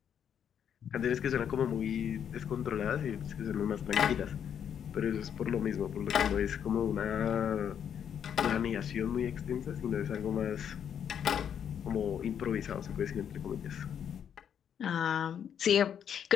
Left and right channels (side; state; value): right; quieter; 8.5 dB